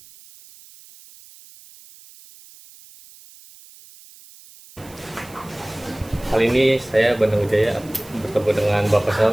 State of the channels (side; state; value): right; noise; hiss, 23 dB below the sound